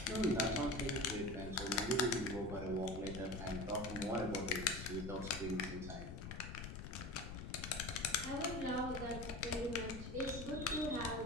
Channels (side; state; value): left; noise; rumble, 8 dB below the sound